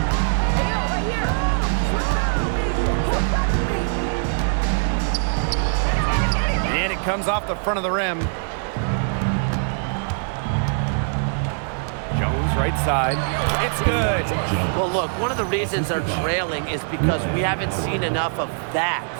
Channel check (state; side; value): silent; left; digital silence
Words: And it comes off the front of the rim. Jones right side. It's good. Well, look, one of the reasons they're trailing is because we haven't seen enough of that.